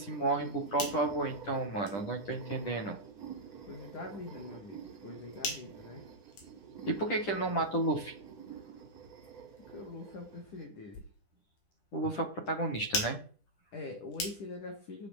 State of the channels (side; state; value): right; late; 10 ms